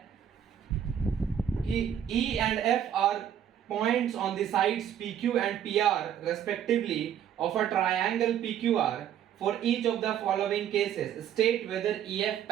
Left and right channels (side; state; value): left; quieter; 9.6 dB